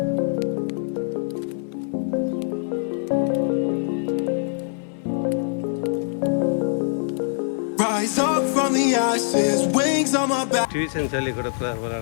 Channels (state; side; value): silent; right; 63 dB below the other